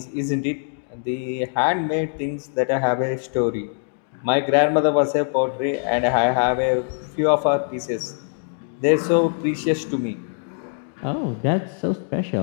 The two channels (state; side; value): silent; right; digital silence